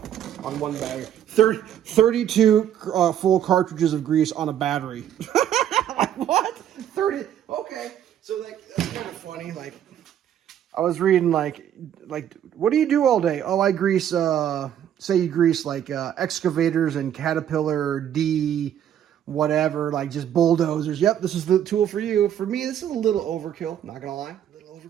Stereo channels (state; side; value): quieter; left; 10.2 dB